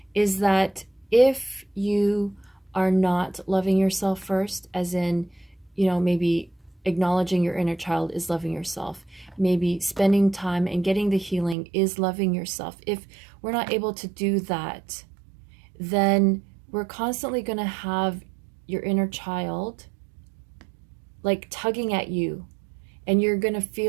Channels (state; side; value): drops out; left; at 11.6 s